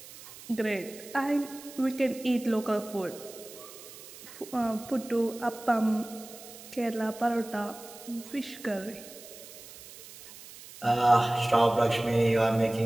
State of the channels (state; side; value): noise; right; hiss, 17 dB below the sound